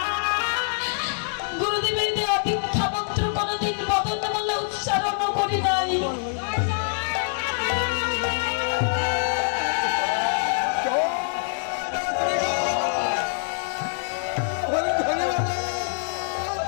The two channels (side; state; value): right; silent; digital silence